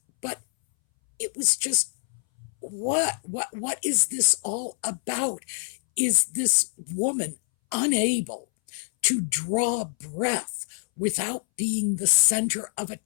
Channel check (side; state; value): right; silent; 61 dB below the other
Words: But it was just, what is this all about? Is this woman unable to draw breath without being the center of